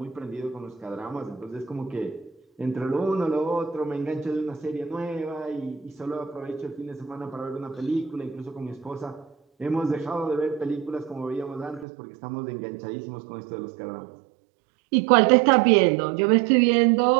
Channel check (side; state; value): left; drops out; at 11.9 s